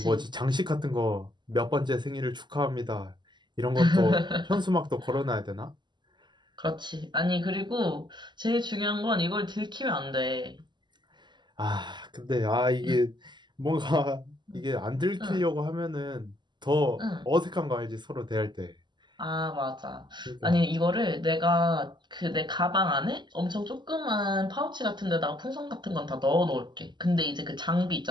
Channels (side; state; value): left; late; 0.21 ms